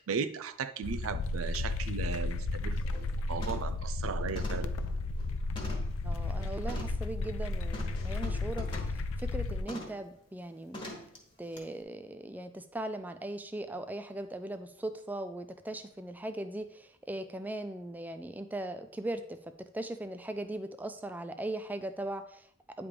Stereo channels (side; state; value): both; normal; correlation 0.67